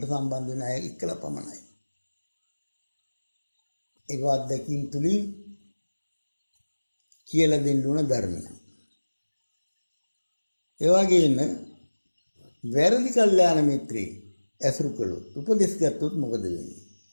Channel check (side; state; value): both; inverted; correlation -1.00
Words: සම්බන්ධ වෙන අය එක්කලා පමණයි. ඒක අත්දැකීම් තුලින් කියලා දෙන්න ඕන ධර්මයක්. ඒ වගේම වැරදි කල්යාණ මිත්‍රේ ඇසුරු කළොත් උපදෙස් ගත්තොත් මොකද වෙන්නේ?